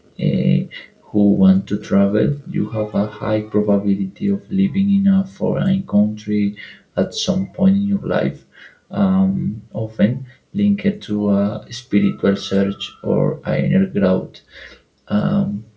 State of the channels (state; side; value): identical; both; correlation 1.00